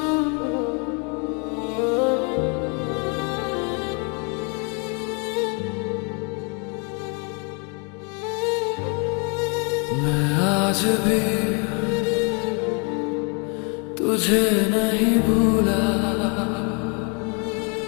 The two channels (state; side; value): quieter; right; 35.2 dB